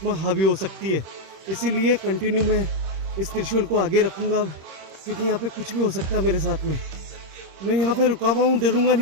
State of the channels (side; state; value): left; late; 26 ms